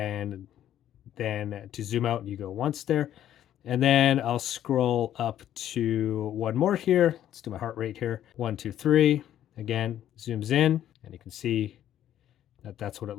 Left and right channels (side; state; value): right; quieter; 11.4 dB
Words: then to zoom out, you go once there. And then I'll scroll up to one more here. Let's do my heart rate here. 1, 2, 3. Again, zooms in, and you can see that that's what it